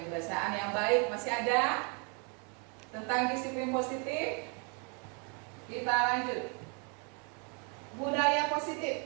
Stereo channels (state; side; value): quieter; left; 36.1 dB